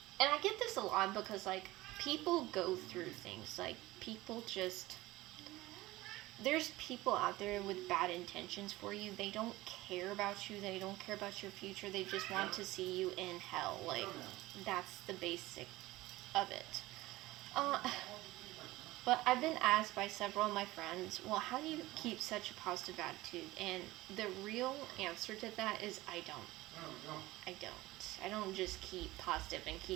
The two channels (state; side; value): quieter; left; 18.6 dB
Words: I get this a lot because, like, people go through things. Like, people just. There's people out there with bad intentions for you. They don't care about you. They don't care about your future. They just want to see you in hell. Like, that's the basic of it. Uh, but I've been asked by several of my friends, well, how do you keep such a positive attitude? And the real answer to that is I don't. I don't just keep positive and